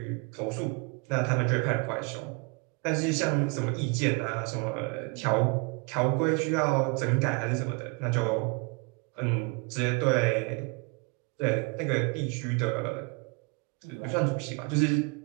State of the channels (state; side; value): quieter; left; 31.3 dB